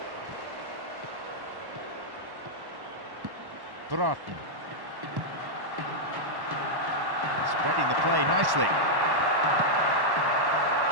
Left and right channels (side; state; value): left; late; 1.1 ms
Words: Broughton. Spreading the play nicely.